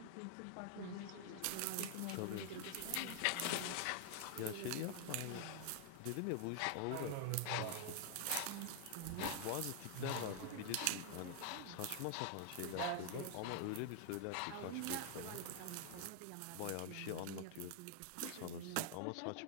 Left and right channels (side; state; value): both; different; correlation 0.00